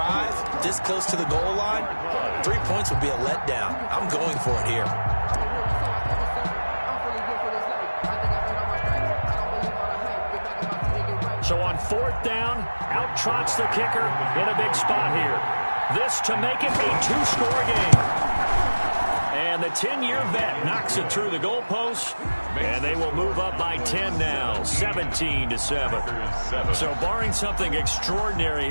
this close to the goal line, 3 points would be a letdown. I'm going for it here. So on 4th down, out trots the kicker in a big spot here. This to make it a 2-score game. And the 10-year vet knocks it through the goalpost, and they will move up by 10 now, 17-7. So barring something extraordinary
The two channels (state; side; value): inverted; both; correlation -1.00